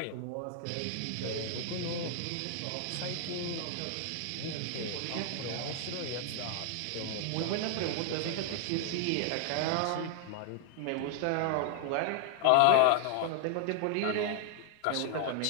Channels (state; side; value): different; both; correlation 0.00